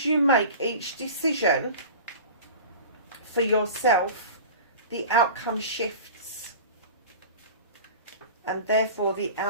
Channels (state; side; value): inverted; both; correlation -0.36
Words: make each decision for yourself. The outcome shifts, and therefore the